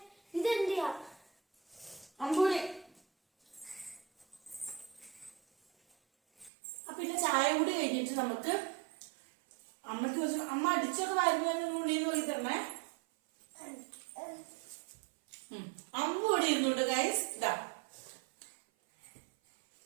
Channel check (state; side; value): drops out; left; at 6.5 s